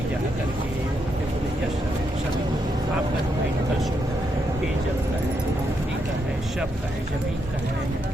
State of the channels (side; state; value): both; normal; correlation 0.80